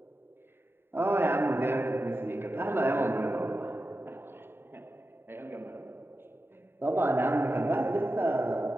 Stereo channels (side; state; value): left; late; 0.11 ms